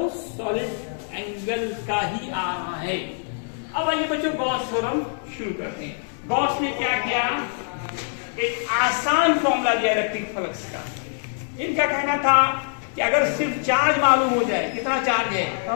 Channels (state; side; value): silent; right; 63 dB below the other